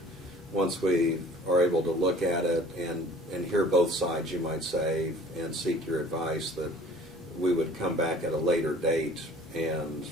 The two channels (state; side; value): normal; both; correlation 0.50